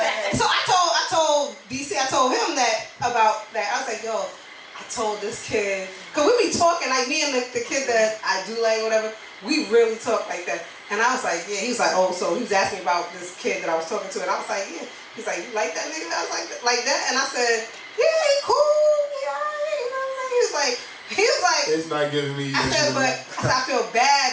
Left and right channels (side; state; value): both; identical; correlation 1.00